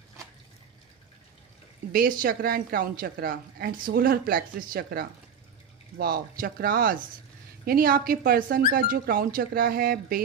Base chakra and crown chakra and solar plexus chakra. Wow, chakras यानी आपके पर्सन का जो क्राउन चक्रा है,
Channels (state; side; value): quieter; left; 6.4 dB